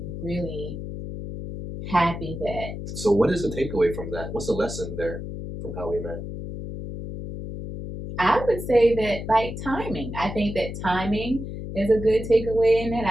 really happy that. So what is the takeaway from that? What's the lesson there from how we met? I would say that like timing. I think that timing is a good takeaway in it.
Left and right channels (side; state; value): left; noise; hum, 8 dB below the sound